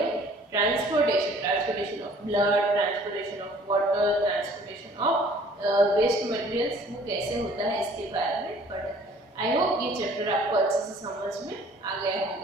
transportation of blood, transportation of water, transportation of waste materials वो कैसे होता है इसके बारे में पढ़ा. आई होप ये चैप्टर आपको अच्छे से समझ में आ गया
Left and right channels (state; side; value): normal; both; correlation 0.53